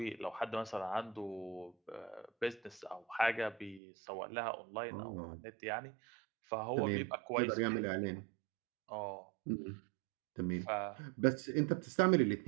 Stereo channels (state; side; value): drops out; left; at 3.8 s